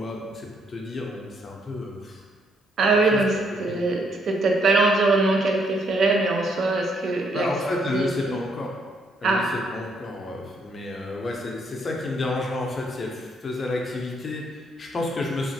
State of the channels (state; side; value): normal; both; correlation 0.72